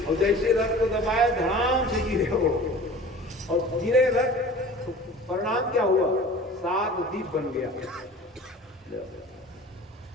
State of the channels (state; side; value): normal; both; correlation 0.41